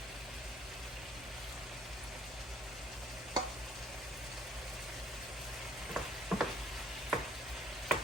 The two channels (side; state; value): both; normal; correlation 0.60